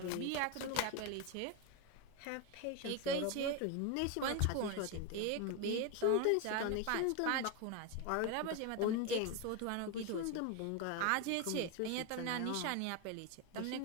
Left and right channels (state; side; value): different; both; correlation 0.02